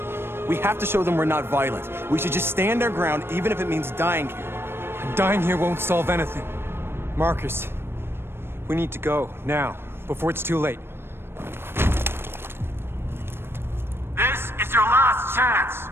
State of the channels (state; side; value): late; left; 0.11 ms